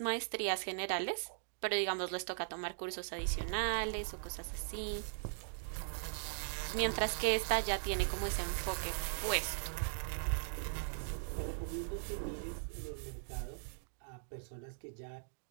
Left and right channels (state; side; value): silent; left; digital silence